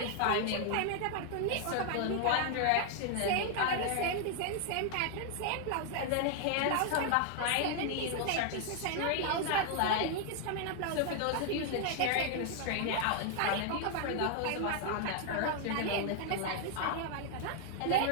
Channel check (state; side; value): different; both; correlation 0.00